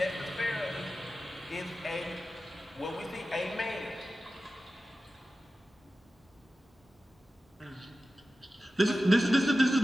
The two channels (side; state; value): both; normal; correlation 0.94